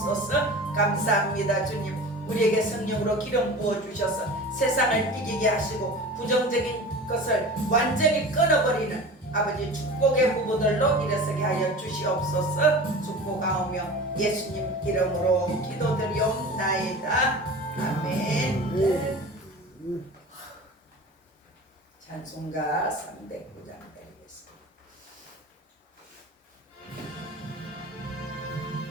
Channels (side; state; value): both; normal; correlation 0.36